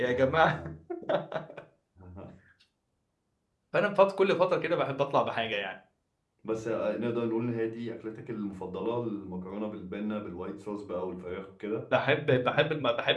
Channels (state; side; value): identical; both; correlation 1.00